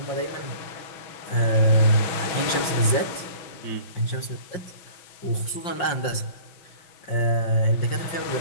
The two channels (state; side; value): late; right; 5.6 ms